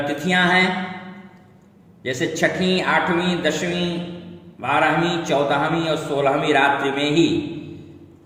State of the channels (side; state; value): both; identical; correlation 1.00